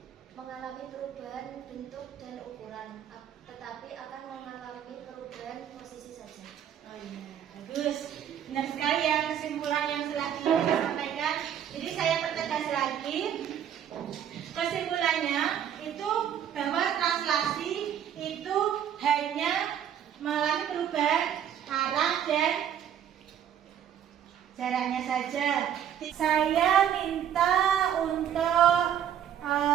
mengalami perubahan bentuk dan ukuran, tetapi akan mengalami perubahan posisi saja. Oh iya, bagus. Benar sekali ya kesimpulan yang telah kita sampaikan. Jadi saya pertegas lagi. Kesimpulannya itu bahwa translasi itu hanya mengalami perubahan arah dan jaraknya saja. Saya minta untuk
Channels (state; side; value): quieter; left; 9.5 dB